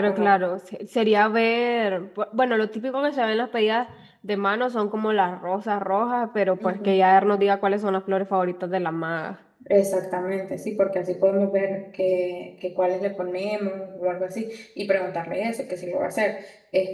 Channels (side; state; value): both; identical; correlation 1.00